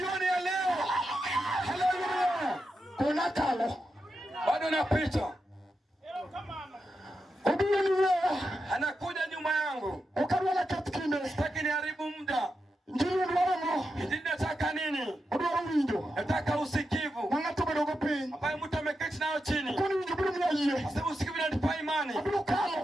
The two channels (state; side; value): normal; both; correlation 0.88